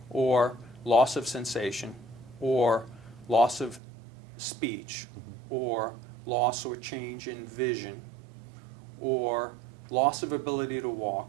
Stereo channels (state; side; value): drops out; left; at 3.8 s